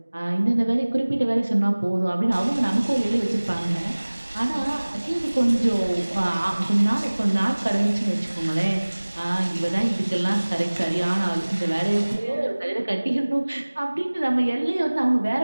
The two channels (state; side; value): inverted; both; correlation -1.00